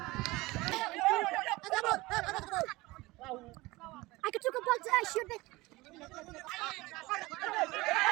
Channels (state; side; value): quieter; left; 21.2 dB